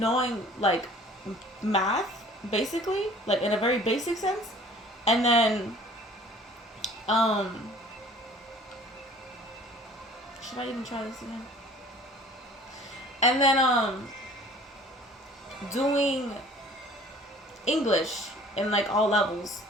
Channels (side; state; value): both; normal; correlation 0.50